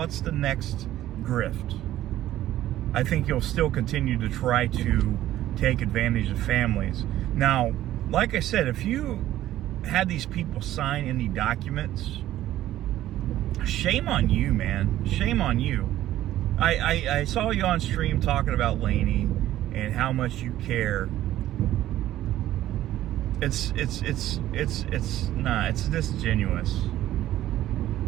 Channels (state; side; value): quieter; left; 13.6 dB